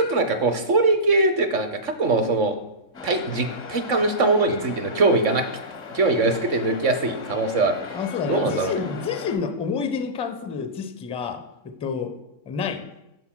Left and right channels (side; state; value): left; late; 3.6 ms